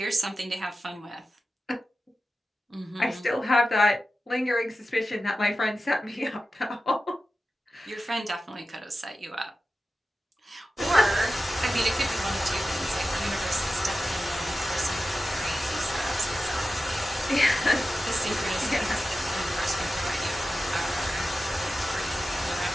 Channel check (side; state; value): both; normal; correlation 0.93